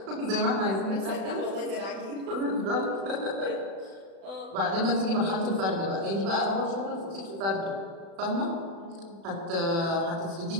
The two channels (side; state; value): left; late; 36 ms